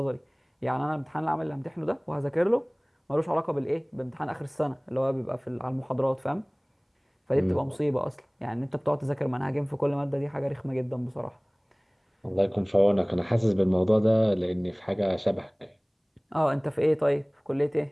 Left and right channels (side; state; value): both; identical; correlation 1.00